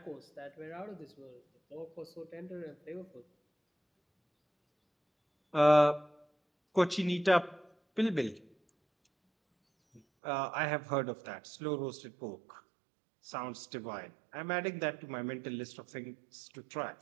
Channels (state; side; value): drops out; left; at 10.0 s